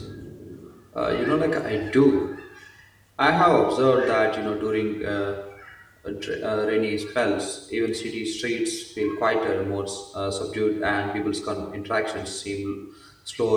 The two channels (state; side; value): identical; both; correlation 1.00